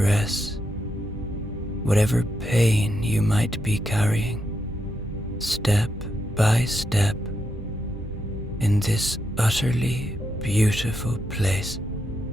whatever pain you might be carrying, step by step, in this utterly beautiful place.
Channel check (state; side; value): normal; both; correlation 0.82